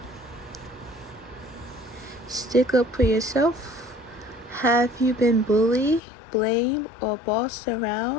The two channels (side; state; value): right; drops out; at 6.0 s